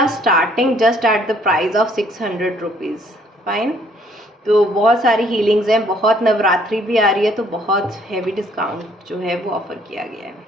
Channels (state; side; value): normal; both; correlation 0.63